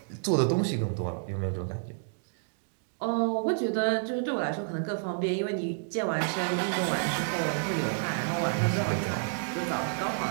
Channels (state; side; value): silent; left; digital silence